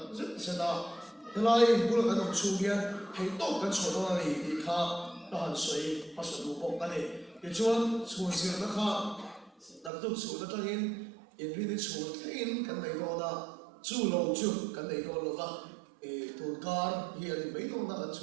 se da ela i bul ka dam chu hian hei to kan so na ni ti kha ta han soi pa so lu bok ka ni ke chuan chhun sir na kha đặc tục số đó trong in vì số in cái này đó là chủ lâu chủ cái này đó là tuần car hiện mấy đó là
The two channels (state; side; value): drops out; left; at 9.9 s